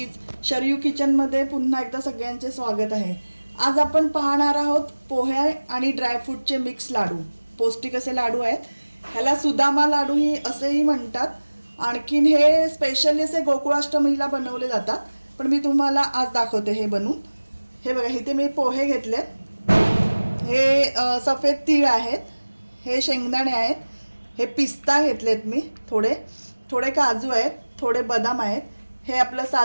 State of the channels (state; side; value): inverted; both; correlation -1.00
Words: शरयू किचनमध्ये पुन्हा एकदा सगळ्यांचे स्वागत आहे. आज आपण पाहणार आहोत पोहे आणि ड्रायफ्रूटचे मिक्स लाडू. पौष्टिक असे लाडू आहेत. ह्याला सुदामा लाडू ही असेही म्हणतात. आणखीन हे स्पेशली असे गोकुळाष्टमीला बनवले जातात. पण मी तुम्हाला आज दाखवते हे बनवून. हे बघा, इथे मी पोहे घेतलेत. हे सफेद तीळ आहेत, हे शेंगदाणे आहेत, हे पिस्ता घेतलेत मी, थोडे काजू आहेत, थोडे बदाम आहेत, हे आपलं